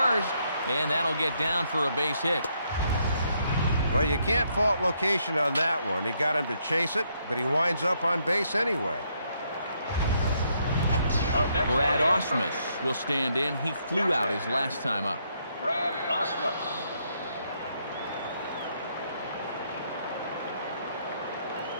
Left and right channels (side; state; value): both; inverted; correlation -0.74